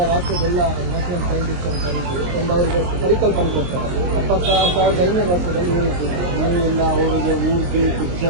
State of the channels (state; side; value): late; left; 23 ms